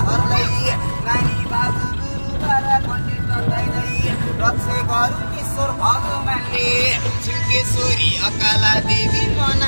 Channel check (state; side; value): inverted; both; correlation -1.00